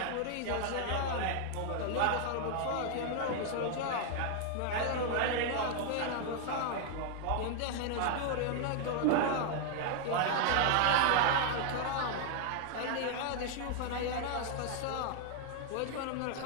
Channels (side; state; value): both; different; correlation 0.00